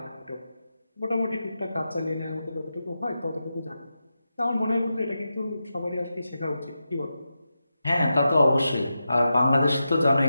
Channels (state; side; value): inverted; both; correlation -0.89